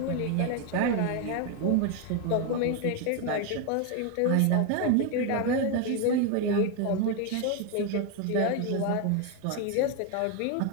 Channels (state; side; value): different; both; correlation 0.01